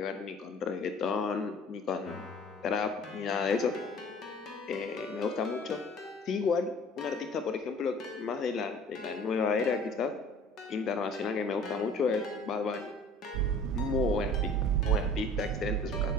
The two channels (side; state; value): both; normal; correlation 0.48